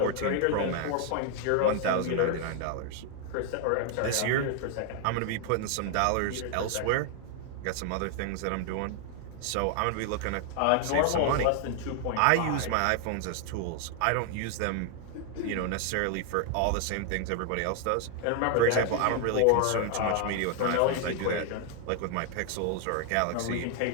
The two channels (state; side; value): different; both; correlation 0.00